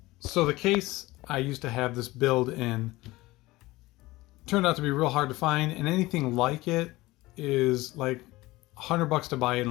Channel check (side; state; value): right; quieter; 19.5 dB